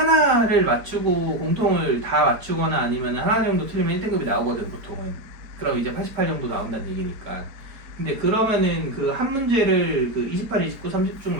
맞추고 공통을 다 맞추거나 아니면 하나 정도 틀리면 1등급이 나오거든 보통은. 그럼 이제 88 정도 나온다는 얘기니까. 근데 그러면은 그 한 문제를 28, 29, 30 중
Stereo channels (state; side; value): late; left; 4.4 ms